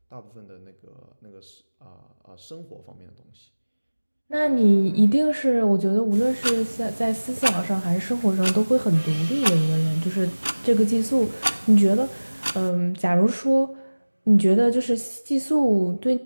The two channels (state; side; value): inverted; both; correlation -1.00